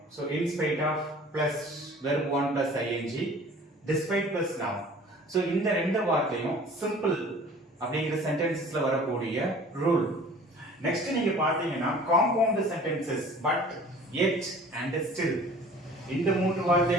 So in spite of plus verb one plus ING, despite plus noun. So இந்த ரெண்டு வார்த்தையும் சிம்பிள் அப்படிங்கிற சென்டென்சஸ்ல வரக்கூடிய ரூல். நெக்ஸ்ட் நீங்க பாத்தீங்கன்னா compound sentences but, yet and still, இந்த மூன்று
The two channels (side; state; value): both; normal; correlation 0.47